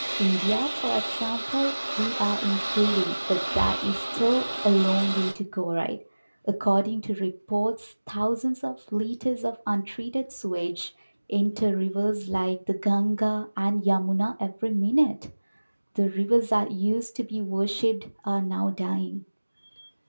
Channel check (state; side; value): inverted; both; correlation -1.00